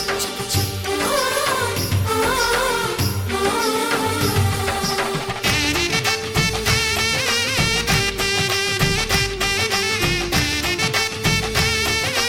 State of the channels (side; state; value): both; identical; correlation 1.00